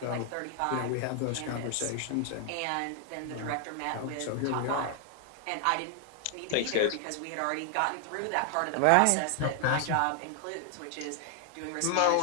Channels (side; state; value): both; different; correlation 0.00